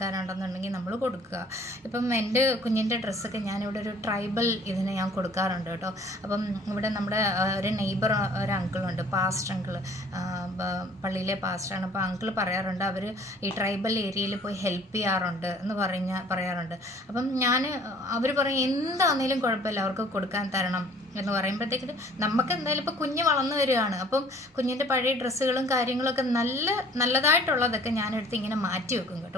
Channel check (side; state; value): both; normal; correlation 0.53